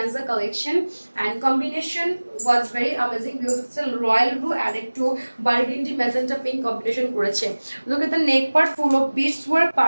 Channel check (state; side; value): inverted; both; correlation -1.00